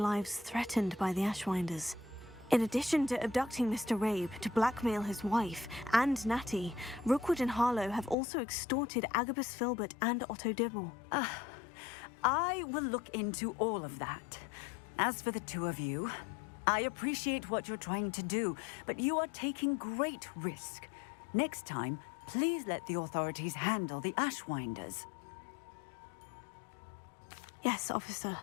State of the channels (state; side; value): drops out; right; at 8.2 s